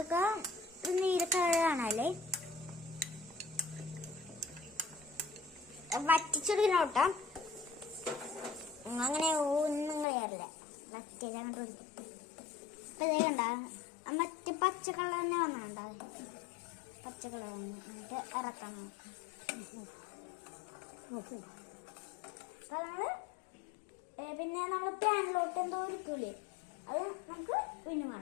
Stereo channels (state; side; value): drops out; right; at 10.1 s